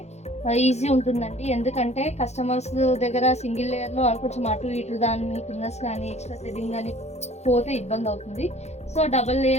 ఈజీ ఉంటుందండి. ఎందుకంటే కస్టమర్స్ దగ్గర సింగిల్ లేయర్లో కొంచెం అటు ఇటు దాని కిందస్ కానీ ఎక్స్ట్రా థ్రెడింగ్ కానీ పోతే ఇబ్బంది అవుతుంది. సో డబల్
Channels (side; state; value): right; late; 0.32 ms